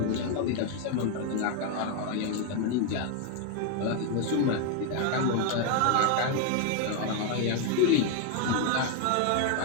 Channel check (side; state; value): both; different; correlation 0.01